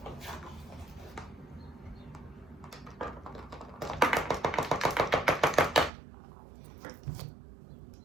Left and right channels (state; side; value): drops out; left; at 5.9 s